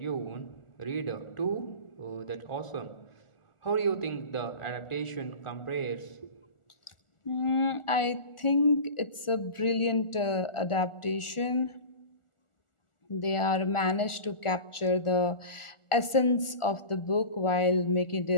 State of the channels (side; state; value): right; late; 1.4 ms